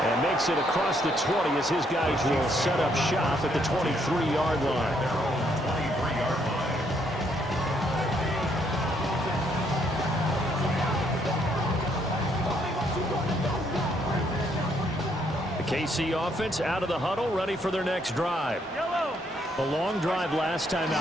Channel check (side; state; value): both; normal; correlation 0.71